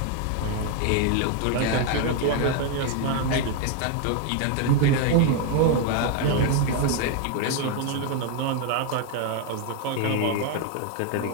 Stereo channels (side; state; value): both; different; correlation 0.01